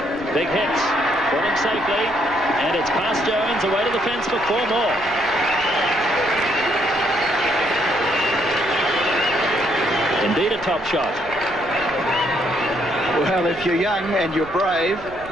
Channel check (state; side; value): noise; right; rumble, 20 dB below the sound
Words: Big hits. Falling safely. And it's past Jones, away to the fence for 4 more. Indeed a top shot. Well, if you're young and you're brave,